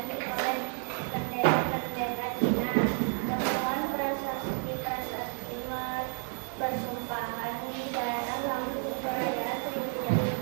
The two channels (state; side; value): silent; left; 57 dB below the other